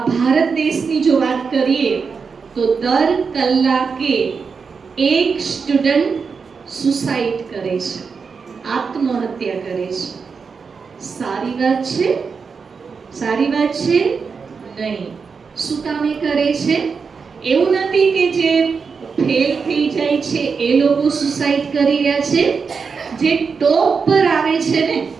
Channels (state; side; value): quieter; left; 5.4 dB